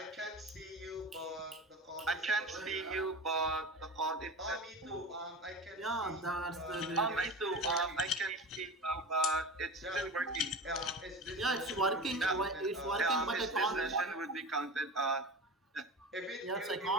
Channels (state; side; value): normal; both; correlation 0.30